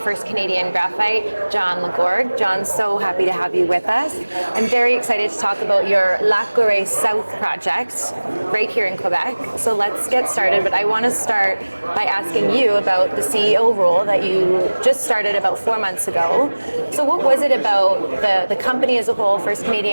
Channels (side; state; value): both; inverted; correlation -1.00